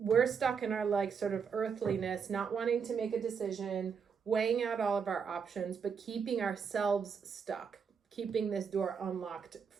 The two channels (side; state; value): left; quieter; 6.4 dB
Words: stuck in our like sort of earthliness, not wanting to make a decision, weighing out all of our options, but keeping ourselves stuck, keeping this door unlocked